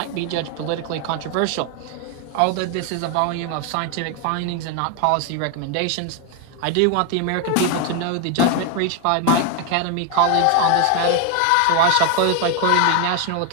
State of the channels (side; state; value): both; different; correlation 0.01